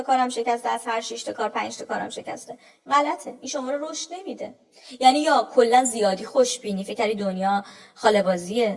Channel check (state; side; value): identical; both; correlation 1.00